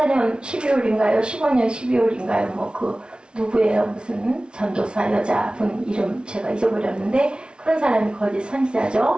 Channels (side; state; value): left; late; 0.056 ms